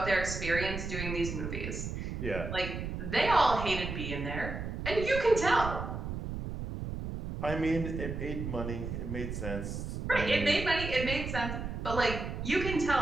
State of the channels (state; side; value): noise; right; rumble, 5 dB below the sound